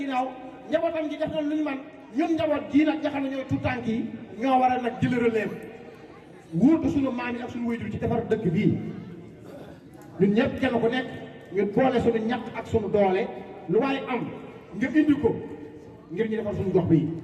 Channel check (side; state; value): both; identical; correlation 1.00